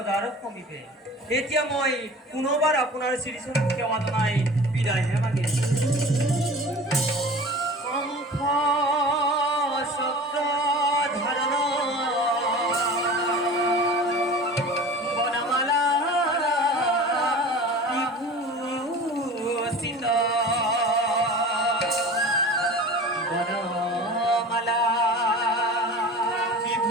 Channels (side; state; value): both; normal; correlation 0.38